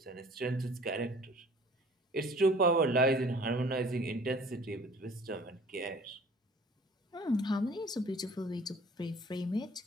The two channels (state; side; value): normal; both; correlation 0.50